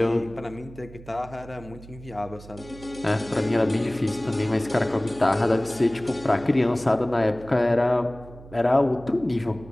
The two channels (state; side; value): noise; right; hum, 18 dB below the sound